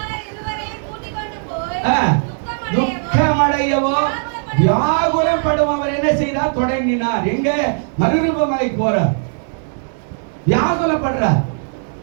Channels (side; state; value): left; silent; digital silence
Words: துக்கமடையவோ வியாகுலம் படும் அவர் என்ன செய்தார், தொடங்கினார். எங்க மறுரூபமாய் போறார், வியாகுலப்படுறார்.